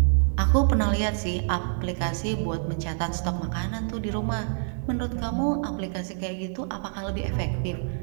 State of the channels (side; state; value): left; silent; digital silence